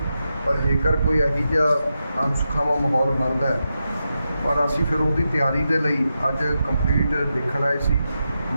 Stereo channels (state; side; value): inverted; both; correlation -0.88